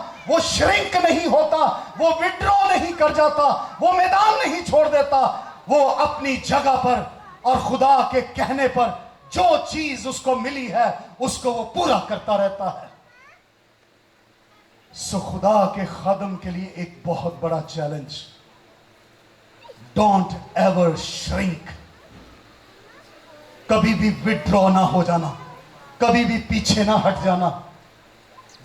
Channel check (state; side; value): identical; both; correlation 1.00